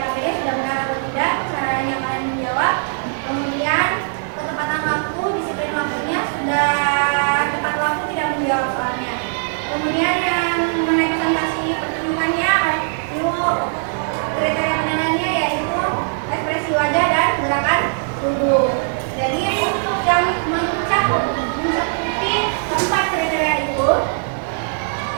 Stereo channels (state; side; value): silent; left; digital silence